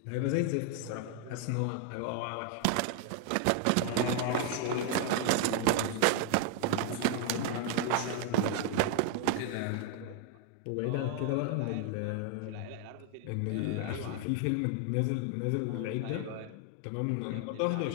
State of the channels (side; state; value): both; different; correlation 0.00